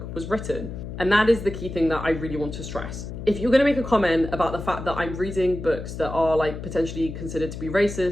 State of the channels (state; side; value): noise; left; hum, 8 dB below the sound